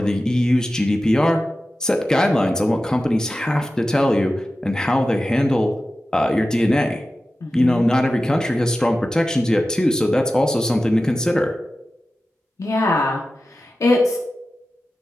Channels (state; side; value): normal; both; correlation 0.94